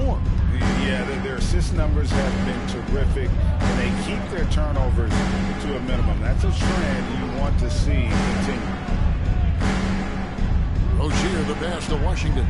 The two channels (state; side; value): identical; both; correlation 1.00